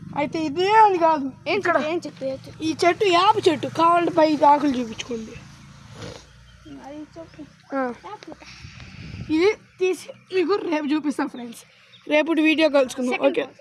అయితే ఇదే అని కాదు, ఇక్కడ ఈ చెట్టు యాప చెట్టు కావాలంటే పై ఆకులు చూపించుకోండి. ఇది తీసి మీకు రేపు చూపిస్తాం ఫ్రెండ్స్. రేపు వీడియో కలుసుకుందాం. ఓకే.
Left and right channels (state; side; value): identical; both; correlation 1.00